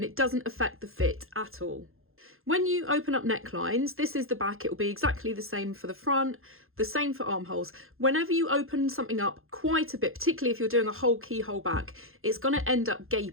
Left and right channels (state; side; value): late; left; 0.61 ms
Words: it doesn't affect the fit at all. When you open up necklines, this is the back, it will be exactly the same for the front, the same for armholes. Whenever you open something up quite a bit, particularly if you're doing a whole keyhole back, it's going to end up